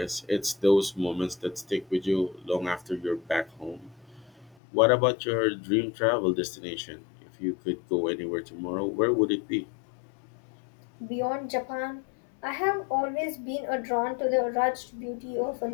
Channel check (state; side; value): drops out; right; at 4.5 s